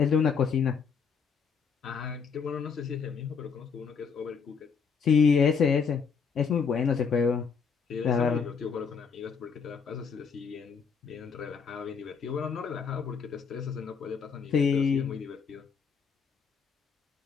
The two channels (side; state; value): right; quieter; 6.0 dB